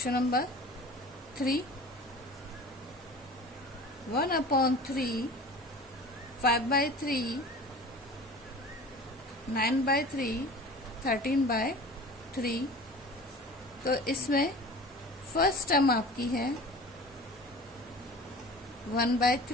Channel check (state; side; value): normal; both; correlation 0.40